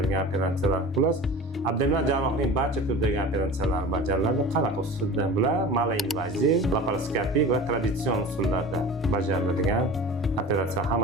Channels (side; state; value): both; normal; correlation 0.36